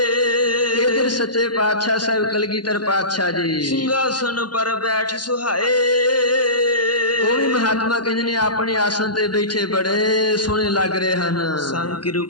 ਇਧਰ ਸੱਚੇ ਪਾਤਸ਼ਾਹ ਸਾਹਿਬ ਕਲਗੀਧਰ ਪਾਤਸ਼ਾਹ ਜੀ ਸਿੰਘਾਸਨ ਪਰ ਬੈਠ ਸੁਹਾਏ, ਉਹ ਵੀ ਮਹਾਤਮਾ ਕਹਿੰਦੇ ਨੇ ਆਪਣੇ ਆਸਣ ਤੇ ਬੈਠੇ ਬੜੇ ਸੋਹਣੇ ਲੱਗ ਰਹੇ ਹਨ। ਸੰਗ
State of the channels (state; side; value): late; right; 0.70 ms